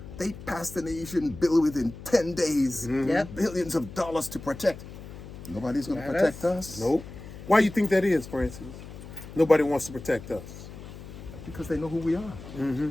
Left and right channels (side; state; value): left; noise; hum, 14 dB below the sound